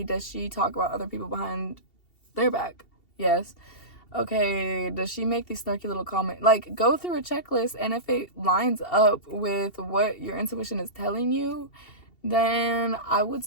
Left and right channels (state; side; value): late; right; 2.7 ms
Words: does she talk about other people behind their back? Yes. Okay, does she make these snarky little comments? Like, go through a checklist, and if it lines up with what your intuition is telling you, then I would